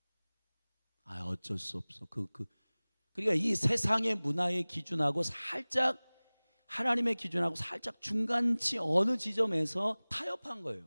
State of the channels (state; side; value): inverted; both; correlation -1.00